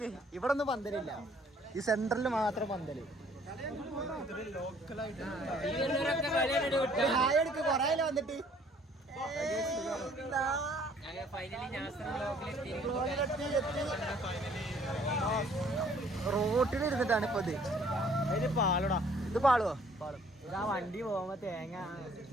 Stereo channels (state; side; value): normal; both; correlation 0.59